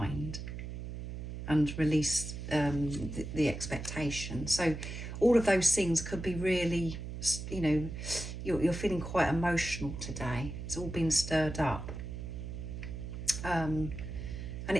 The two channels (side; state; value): right; noise; hum, 7 dB below the sound